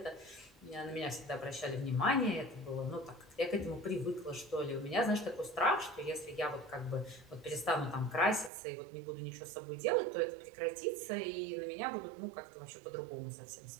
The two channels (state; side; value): drops out; left; at 8.5 s